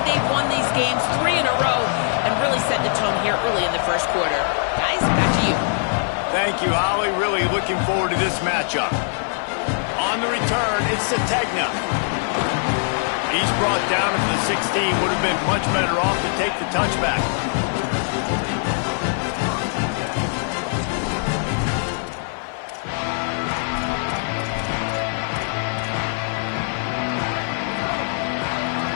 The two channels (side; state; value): right; silent; 56 dB below the other